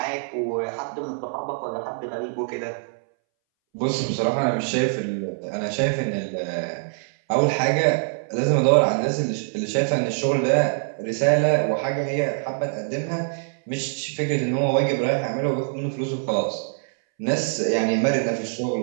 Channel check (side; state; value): left; silent; 62 dB below the other